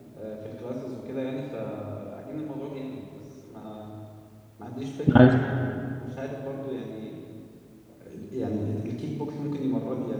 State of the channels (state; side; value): identical; both; correlation 1.00